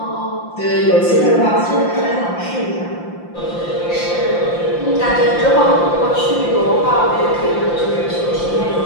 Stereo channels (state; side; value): late; right; 5.8 ms